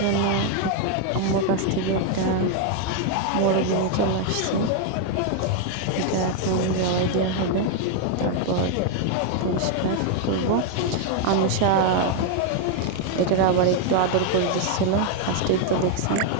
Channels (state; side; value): different; both; correlation 0.00